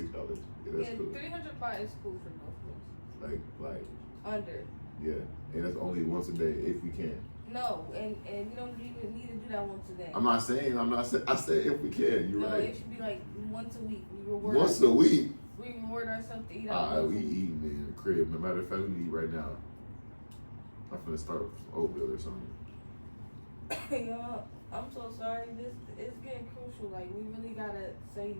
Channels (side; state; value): both; inverted; correlation -1.00